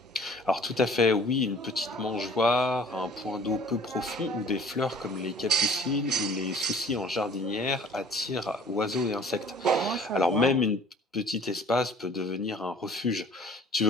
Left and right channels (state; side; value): normal; both; correlation 0.51